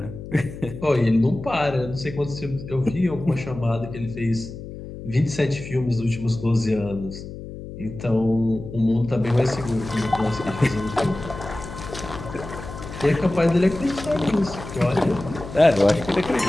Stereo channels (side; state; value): left; noise; hum, 11 dB below the sound